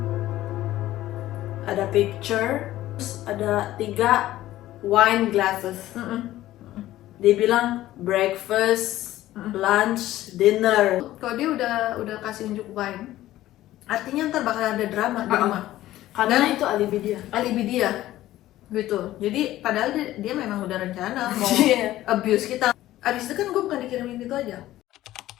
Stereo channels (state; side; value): quieter; right; 14.9 dB